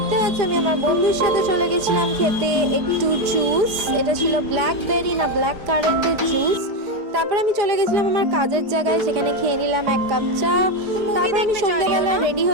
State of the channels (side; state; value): left; late; 4.6 ms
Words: পাচ্ছ আমি আমার বন্ধুর সাথে চলে গেছিলাম খেতে একটু জুস। এটা ছিল ব্ল্যাকবেরি না ব্ল্যাক কারেন্টের জুস। তারপর আমি চলে গেছিলাম আমার কাজের জায়গায়, সেখানে খেয়ে নিলাম এক কাপ চা। তারপর আমি সন্ধ্যাবেলা রেডি